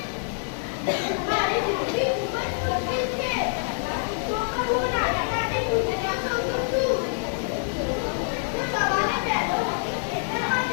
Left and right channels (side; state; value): right; silent; digital silence